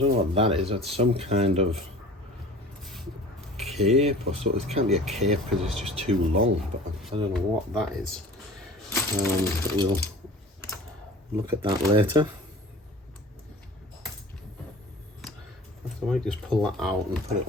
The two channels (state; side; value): normal; both; correlation 0.43